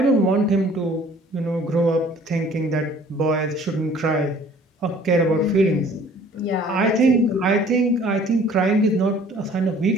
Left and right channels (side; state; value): both; normal; correlation 0.53